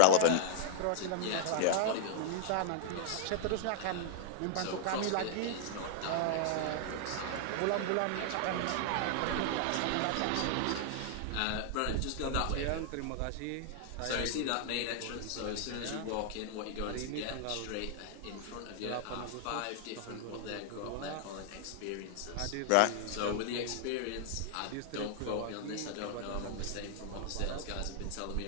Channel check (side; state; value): both; different; correlation 0.00